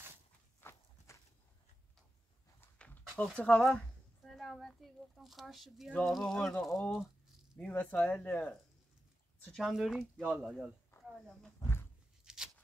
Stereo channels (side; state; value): both; normal; correlation 0.91